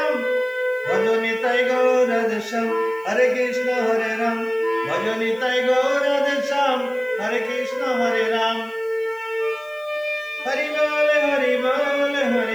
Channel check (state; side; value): noise; left; hiss, 29 dB below the sound